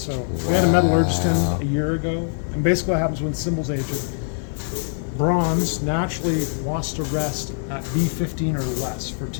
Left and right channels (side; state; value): right; silent; 59 dB below the other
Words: we had a metallurgist in a year ago, and basically what happens when cymbals age, bronze naturally wants to rest at B15 or less for